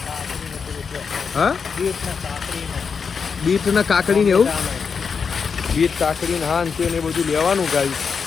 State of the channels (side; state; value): right; quieter; 5.9 dB